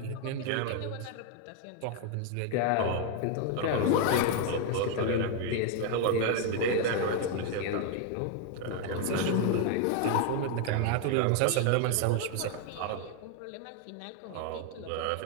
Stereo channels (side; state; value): both; different; correlation 0.01